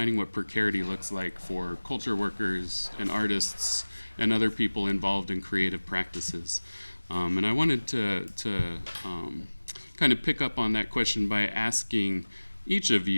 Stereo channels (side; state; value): both; inverted; correlation -1.00